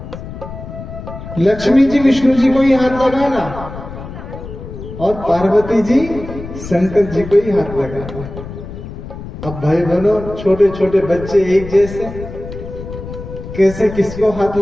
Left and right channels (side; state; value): left; noise; rumble, 11 dB below the sound